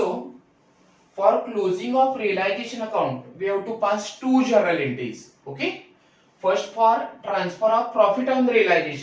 for closing of realisation account we have to pass two journal entries. Okay, first for transfer of profit on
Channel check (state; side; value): identical; both; correlation 1.00